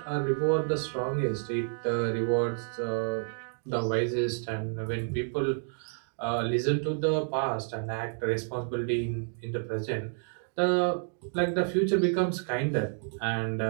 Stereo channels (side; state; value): left; silent; 58 dB below the other